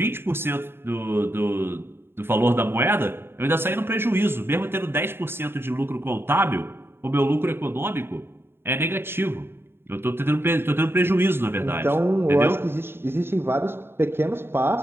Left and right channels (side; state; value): left; late; 0.11 ms